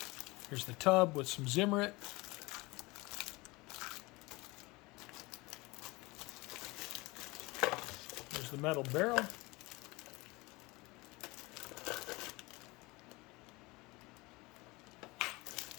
Here's the tub with some Zimmerit. There's the metal barrel.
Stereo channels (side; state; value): right; quieter; 23.4 dB